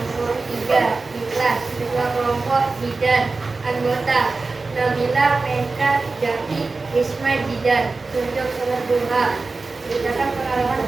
3 ikhlas. Ketua kelompok Jidan. Anggota Nabila, Meka, Jaki, Isma, Jidan. Tunjuk sholat duha. Ceritakan pengalaman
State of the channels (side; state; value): left; quieter; 3.8 dB